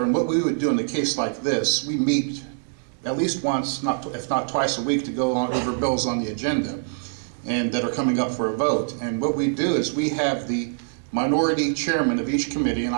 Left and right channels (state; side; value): silent; left; digital silence